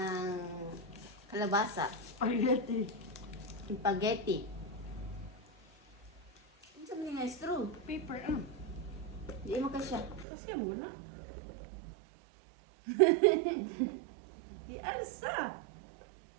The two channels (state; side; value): drops out; left; at 10.2 s